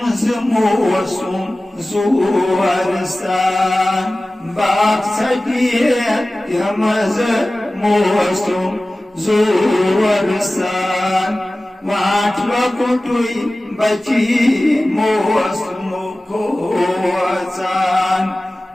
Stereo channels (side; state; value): both; normal; correlation 0.97